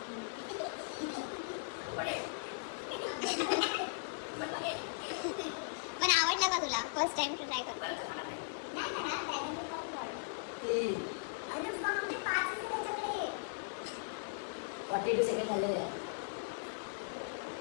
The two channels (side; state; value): right; silent; digital silence